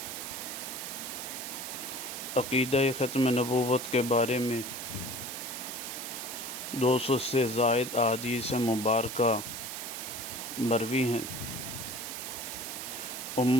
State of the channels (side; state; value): right; noise; hiss, 6 dB below the sound